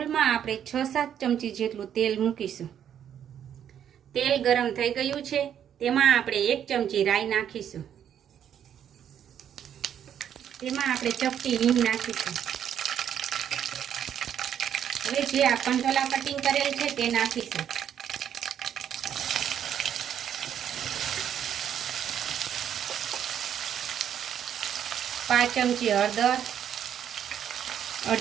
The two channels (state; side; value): quieter; left; 9.4 dB